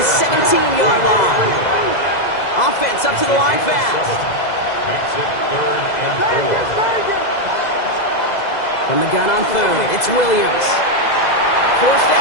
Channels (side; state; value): right; late; 2.0 ms